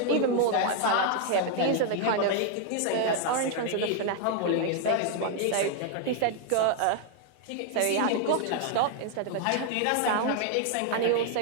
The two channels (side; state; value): both; different; correlation 0.00